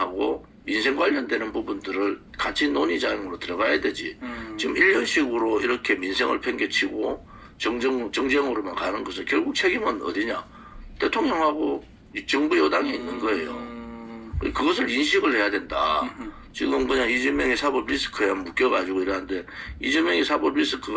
민생 관련되는 부분들을 같이 논의장으로 들어가야 되지. 지금 1년씩으로 이렇게 민생을 팽개치고 정쟁으로만 가는 것은 결국 책임은 어디냐? 대통령하고 정부 여당에 있는 거예요. 그것을 인식을 해야 된다. 지금 그냥 이재명의 사법 리스크에 묶여가지고 이러는데 이재명의 사법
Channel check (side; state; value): both; identical; correlation 1.00